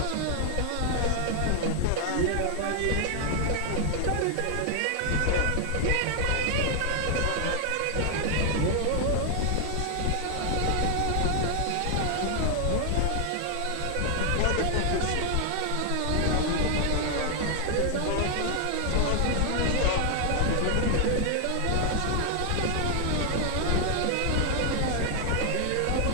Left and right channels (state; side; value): different; both; correlation 0.00